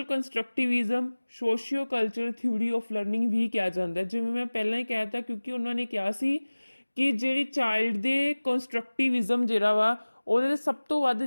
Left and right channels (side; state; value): both; inverted; correlation -1.00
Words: constructivism socio culture theory of learning ਵੀ ਕਿਹਾ ਜਾਂਦਾ, ਜਿਵੇਂ ਮੈਂ ਪਹਿਲਾਂ ਹੀ ਕਹਿ ਤਾ, ਕਿਉਂਕਿ ਉਹਨਾਂ ਨੇ ਕਿਹਾ ਸੀ ਕਿ ਜਿਹੜੀ ਚਾਈਲਡ ਦੇ ਕੰਸਟਰਕਟਿਵਿਜ਼ਮ ਜਿਹੜਾ ਵਾ ਉਹਦੇ ਸਭ ਤੋਂ ਵੱਧ